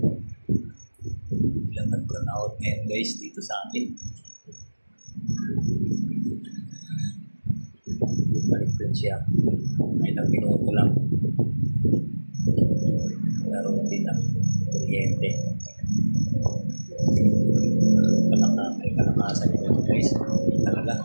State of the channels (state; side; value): inverted; both; correlation -1.00